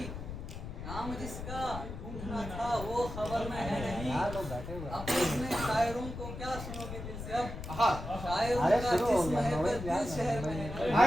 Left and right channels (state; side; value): noise; left; rumble, 8 dB below the sound